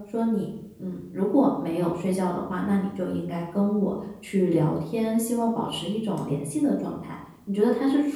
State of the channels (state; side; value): identical; both; correlation 1.00